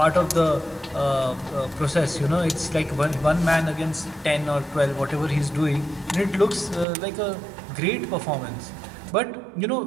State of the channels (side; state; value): left; drops out; at 6.9 s